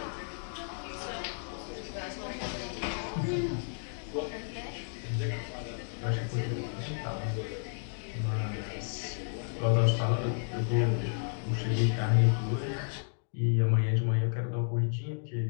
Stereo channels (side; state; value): right; silent; digital silence